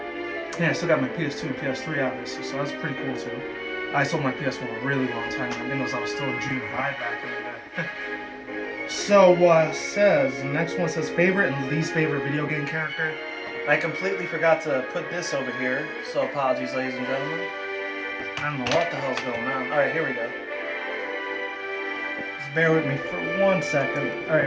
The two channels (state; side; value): identical; both; correlation 1.00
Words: Yeah, I still got my PS2 and PS3 obviously, so that's pretty cool too. I sold my PS1 a really long time ago. I think I was still in junior high back in the day. So, the next one says favorite and least favorite video game character. I completely forgot to put this over here, so apologies, ladies and gentlemen. I don't know what the hell's going on. Alright, here we go. Just bear with me for 1 second. Alright,